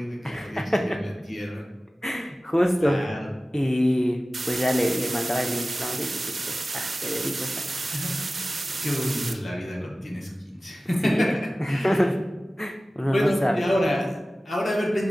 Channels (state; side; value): normal; both; correlation 0.96